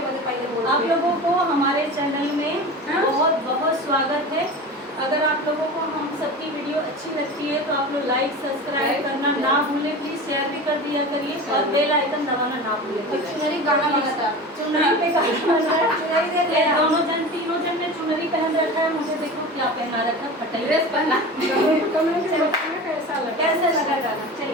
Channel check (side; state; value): both; normal; correlation 0.32